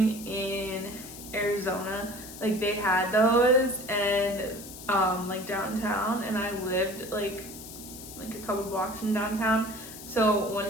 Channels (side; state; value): left; noise; hiss, 14 dB below the sound